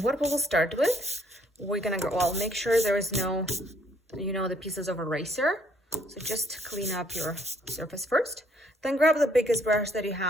what we'll start with, we're going to go, well, make sure there is no, the pieces of eraser. So just clean up your surface first. Then grab the biggest brush that you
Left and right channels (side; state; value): both; normal; correlation 0.66